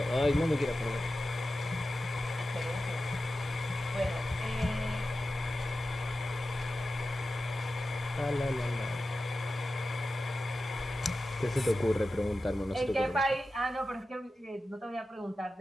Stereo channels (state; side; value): normal; both; correlation 0.93